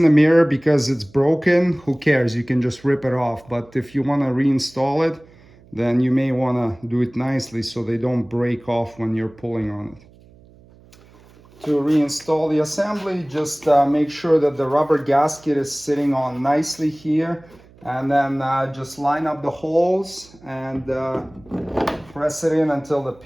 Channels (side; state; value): right; noise; hum, 26 dB below the sound